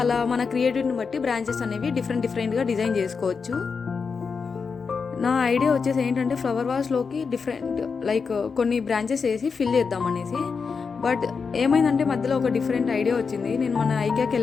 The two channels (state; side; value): quieter; right; 5.4 dB